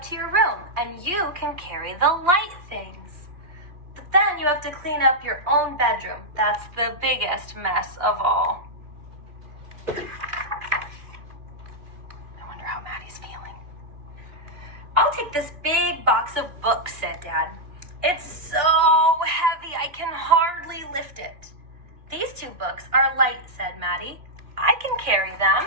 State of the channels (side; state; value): left; late; 2.6 ms